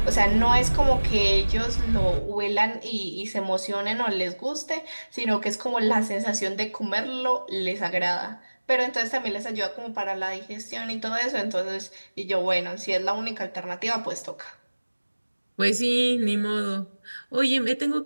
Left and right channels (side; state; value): both; inverted; correlation -1.00